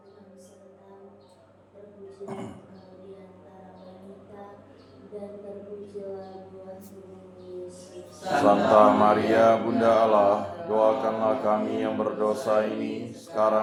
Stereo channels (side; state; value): both; identical; correlation 1.00